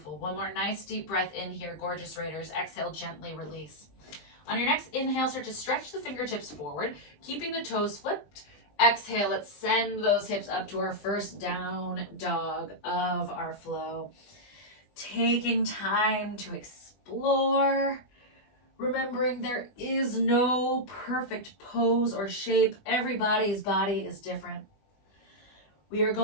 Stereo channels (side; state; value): right; late; 20 ms